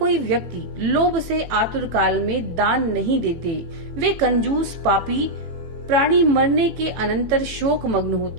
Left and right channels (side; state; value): left; late; 18 ms